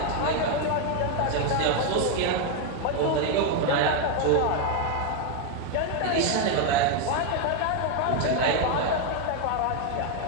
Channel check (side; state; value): both; different; correlation 0.01